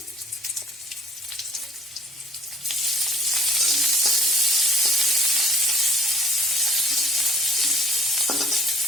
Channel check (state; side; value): normal; both; correlation 0.53